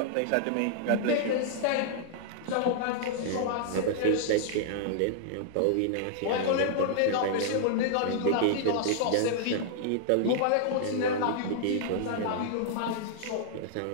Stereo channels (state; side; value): different; both; correlation -0.01